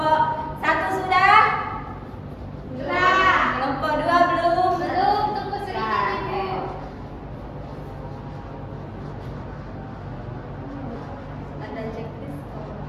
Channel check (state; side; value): identical; both; correlation 1.00